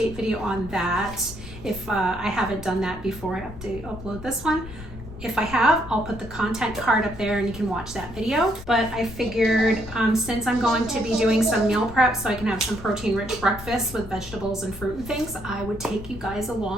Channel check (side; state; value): left; noise; rumble, 14 dB below the sound